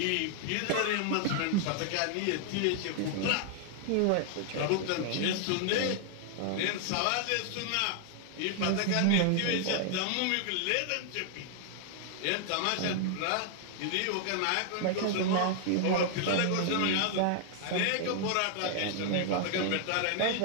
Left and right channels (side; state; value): both; different; correlation 0.00